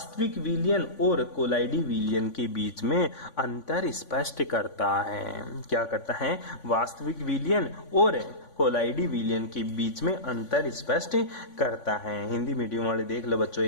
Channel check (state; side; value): late; right; 3.5 ms